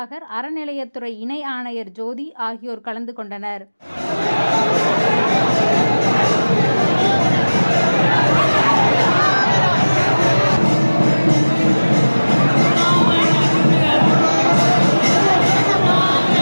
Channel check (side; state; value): both; inverted; correlation -1.00